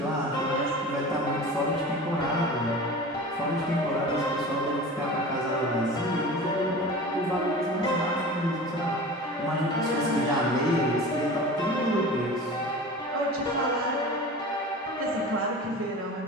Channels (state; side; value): normal; both; correlation 0.36